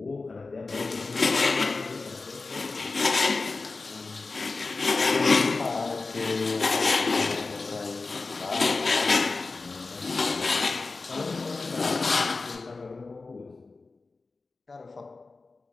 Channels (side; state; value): right; quieter; 3.8 dB